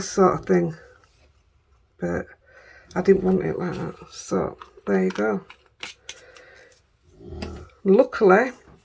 sort of thing. But I didn't want it like that. So, there you go. Luckily,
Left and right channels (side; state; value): both; identical; correlation 1.00